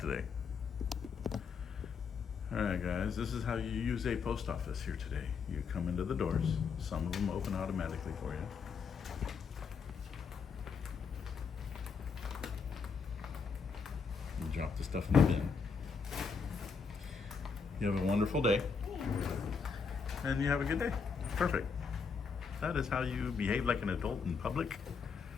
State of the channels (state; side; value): quieter; right; 5.6 dB